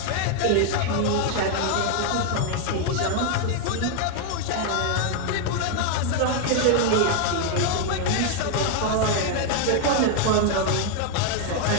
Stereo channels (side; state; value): both; different; correlation 0.00